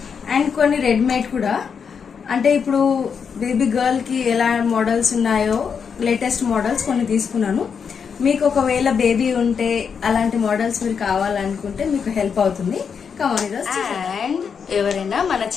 అండ్ కొన్ని రెడీమేడ్ కూడా. అంటే ఇప్పుడు బేబీ గర్ల్ కి ఎలా మోడల్స్ ఉన్నాయో లేటెస్ట్ మోడల్స్ కొన్ని తీసుకున్నాను. మీకు ఒకవేళ బేబీ ఉంటే అలాంటి మోడల్స్ మీరు కావాలనుకుంటే మీకు హెల్ప్ అవుతుంది. అండ్ ఎవరైనా మన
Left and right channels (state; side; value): quieter; right; 6.5 dB